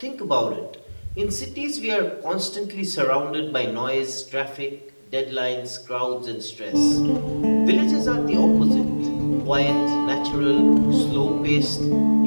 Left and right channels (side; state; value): both; inverted; correlation -1.00